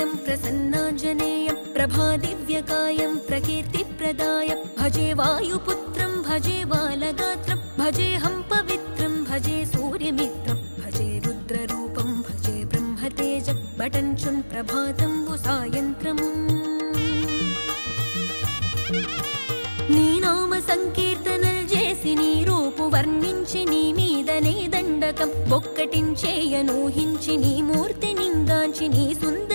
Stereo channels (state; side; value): inverted; both; correlation -1.00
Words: प्रसन्नाञ्जनेयं प्रभादिव्यकायं प्रकीर्तिप्रदाय भजे वायुपुत्रं भजे बालगात्रं भजेऽहं पवित्रं भजे सूर्यमित्रं भजे रुद्ररूपं भजे ब्रह्मतेज बटञ्चुन् प्रभातं सायन्त्रम् నీ నామ సంకీర్తనలు చేసి నీ రూపు వర్ణించి నీ మీదనే దండకం ఒక్కటించేయనూహించి నీ మూర్తి నింగాంచి నీ